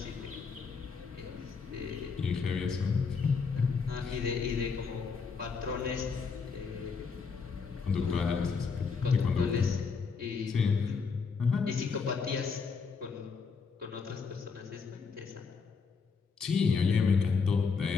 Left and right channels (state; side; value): quieter; right; 5.3 dB